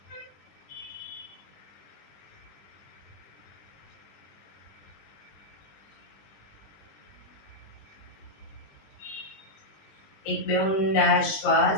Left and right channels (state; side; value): late; right; 20 ms